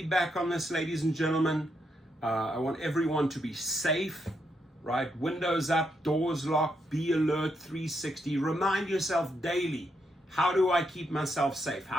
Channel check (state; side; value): normal; both; correlation 0.80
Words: on this, ladies and gentlemen. I want everyone to be safe, right? Windows up, doors locked, be alert 360. Remind yourself daily, how do I keep myself safe?